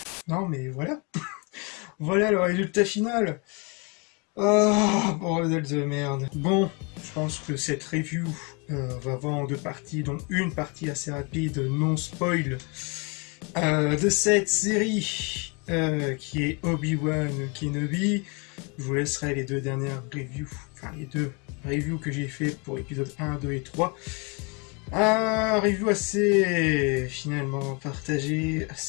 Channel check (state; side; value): quieter; right; 32.0 dB